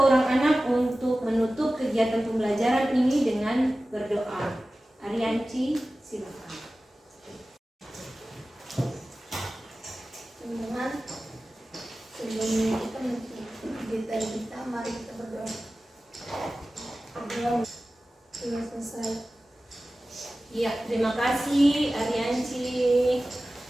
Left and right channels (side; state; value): both; normal; correlation 0.96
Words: orang anak untuk menutup kegiatan pembelajaran ini dengan berdoa. Arianci, silakan. Teman-teman, sebelum kita kita mari kita berdoa. Berdoa sudah selesai. Iya, terima kasih Arianci.